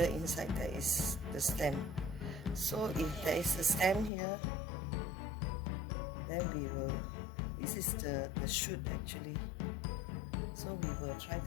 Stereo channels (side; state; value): right; drops out; at 4.1 s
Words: inside there is the stem. So if there is a stem here, then we will, this is the shoot actually, so we will try